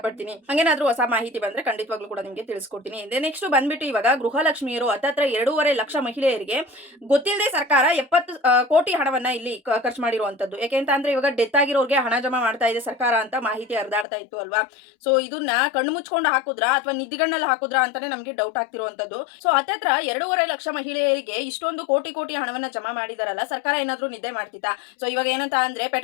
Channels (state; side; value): drops out; right; at 14.1 s